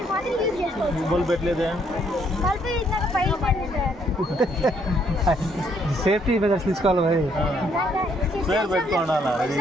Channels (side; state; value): both; normal; correlation 0.69